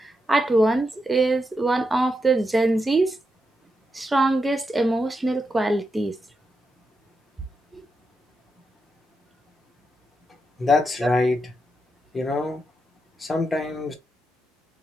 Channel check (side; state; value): both; normal; correlation 0.85